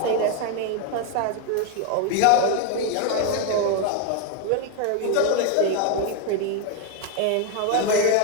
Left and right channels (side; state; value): both; different; correlation 0.01